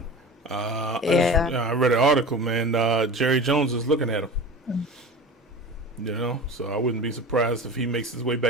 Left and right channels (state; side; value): normal; both; correlation 0.33